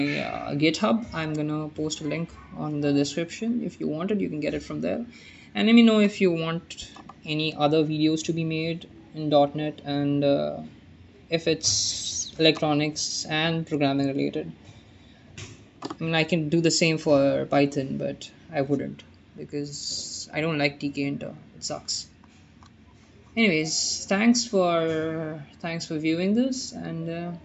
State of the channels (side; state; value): both; identical; correlation 1.00